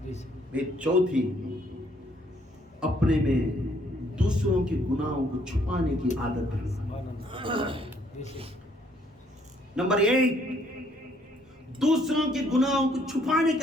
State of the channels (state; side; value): normal; both; correlation 0.66